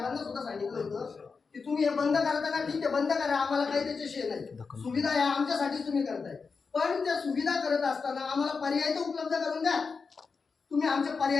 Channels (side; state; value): right; quieter; 5.0 dB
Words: सुद्धा सांगितलं होतं की तुम्ही हे बंद करता का, ठीक आहे बंद करा, आम्हाला काही त्याच्याशी नाही, सुविधा या आमच्यासाठीच तुम्ही करताय. पण त्या सुविधा करत असताना आम्हाला पर्याय तर उपलब्ध करून द्या. तुम्ही आमचे